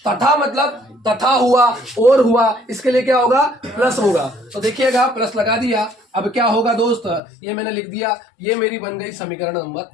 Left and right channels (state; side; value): drops out; right; at 7.2 s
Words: तथा मतलब तथा हुआ और हुआ, इसके लिए क्या होगा, प्लस होगा। तो देखिएगा, प्लस लगा दिया। अब क्या होगा दोस्त, ये मैंने लिख दिया, ये मेरी बन गई समीकरण